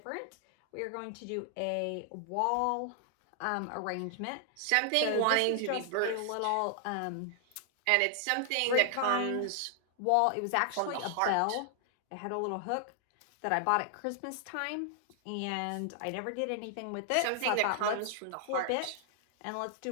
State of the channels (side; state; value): both; different; correlation 0.00